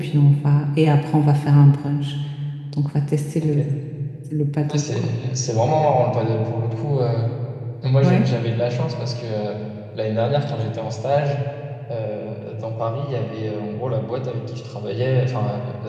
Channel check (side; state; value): both; identical; correlation 1.00